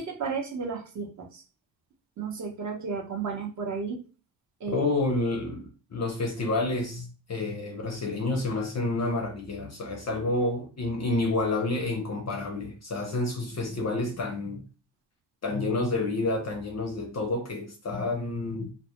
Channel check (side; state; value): both; normal; correlation 0.15